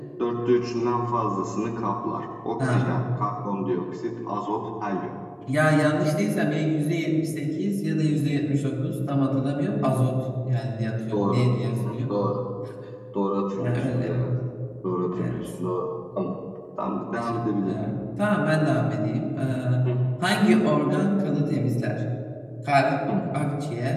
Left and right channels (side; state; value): both; identical; correlation 1.00